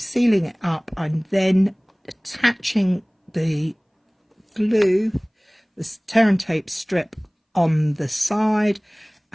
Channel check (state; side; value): identical; both; correlation 1.00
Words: it up. I'm then attaching the glue, the tear and tape strip on the side